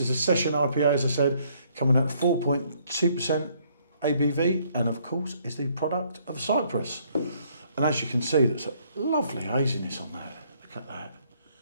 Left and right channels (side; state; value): both; inverted; correlation -0.66